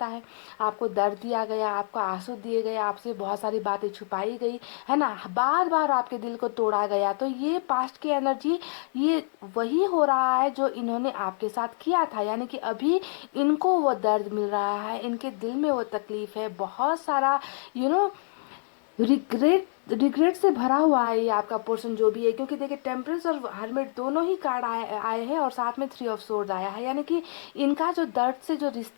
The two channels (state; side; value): silent; right; 60 dB below the other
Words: है आपको दर्द दिया गया, आपको आंसू दिए गए, आपसे बहुत सारी बातें छुपाई गई है ना, बार बार आपके दिल को तोड़ा गया। तो ये पास्ट की एनर्जी, ये वही हो रहा है जो इन्होंने आपके साथ किया था, यानी कि अभी इनको वो दर्द मिल रहा है, इनके दिल में वो तकलीफ है, बहुत सारा रिग्रेट से भरा हुआ है ये आपका पोर्शन जो भी है। क्योंकि देखिए टेम्परेंस और हर्मिट दोनों ही कार्ड आए हैं, और साथ में 3 ऑफ सोर्ड्स आया है, यानी कि इनका जो दर्द से जो